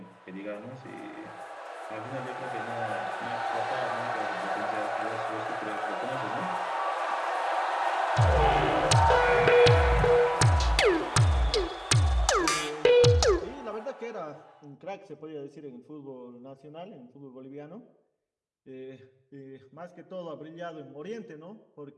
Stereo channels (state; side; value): identical; both; correlation 1.00